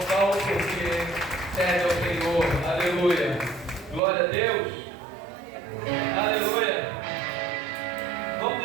Saulo porque serve ao Senhor. Aleluia. Glória a Deus. Aleluia. Vamos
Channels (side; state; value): left; drops out; at 4.0 s